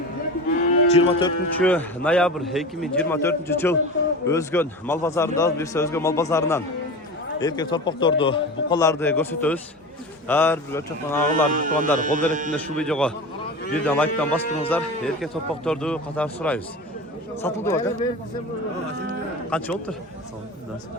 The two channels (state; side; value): normal; both; correlation 0.30